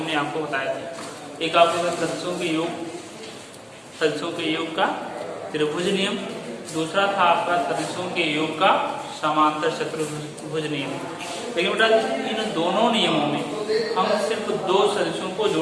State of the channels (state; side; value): identical; both; correlation 1.00